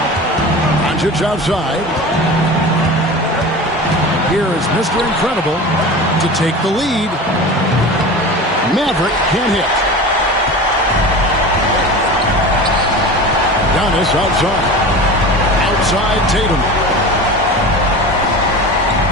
Doncic outside. Here is Mr. Incredible to take the lead. Maverick can't hit. Giannis outside. Outside Tatum.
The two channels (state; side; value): normal; both; correlation 0.32